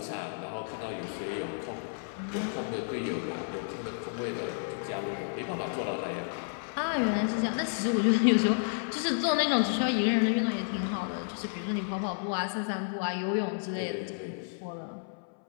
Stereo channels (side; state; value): right; silent; 57 dB below the other